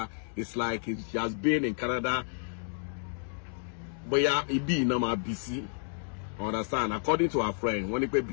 it's like she has been in Canada. Bóyá ibi iná máa bí sí. Understand? According to our friend, wọ́n ní pé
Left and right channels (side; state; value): right; silent; digital silence